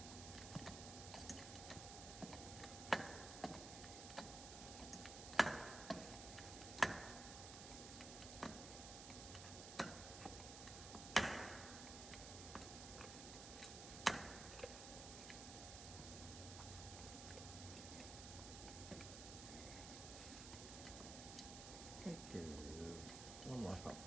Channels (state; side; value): noise; right; hiss, 8 dB below the sound